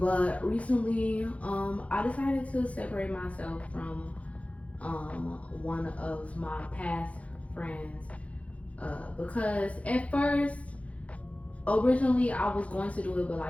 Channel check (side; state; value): right; late; 0.065 ms